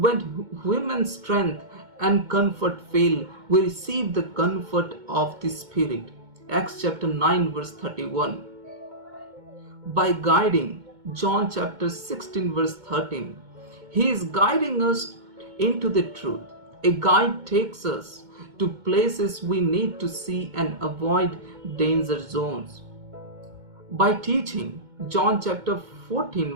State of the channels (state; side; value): late; left; 2.2 ms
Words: human strength and comfort fail, we receive the comfort of the Spirit. Acts chapter 9 verse 31. By guiding, John chapter 16 verse 13. He is guiding us into the truth. A guide takes us to places we need to see and avoid danger zones. By teaching, John chapter